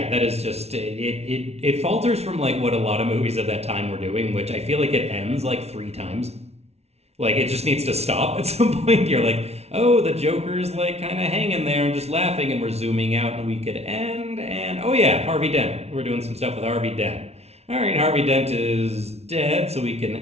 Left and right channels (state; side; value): late; left; 0.31 ms